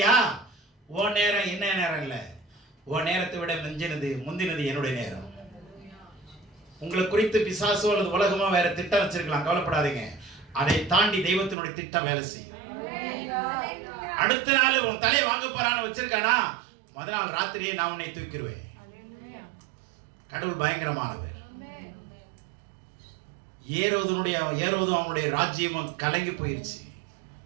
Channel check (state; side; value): drops out; left; at 11.6 s